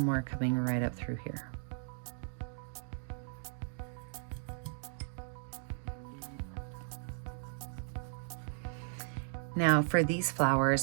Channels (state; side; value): silent; left; 54 dB below the other